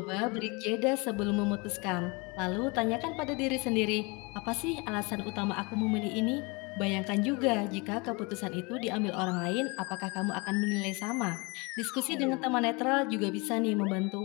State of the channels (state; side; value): quieter; right; 28.2 dB